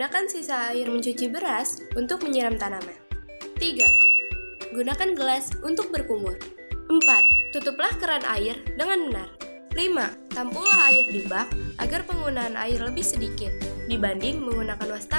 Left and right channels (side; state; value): both; inverted; correlation -1.00